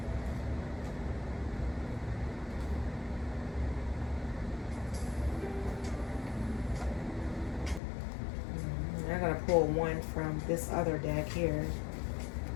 I'm going to pull one from this other deck here.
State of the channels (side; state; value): right; drops out; at 7.8 s